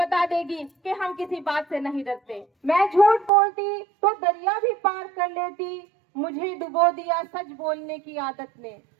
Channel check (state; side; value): drops out; left; at 3.3 s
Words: देगी कि हम किसी बात से नहीं डरते। मैं झूठ बोलती तो दरिया भी पार कर लेती, मुझे डुबो दिया सच बोलने की आदत ने।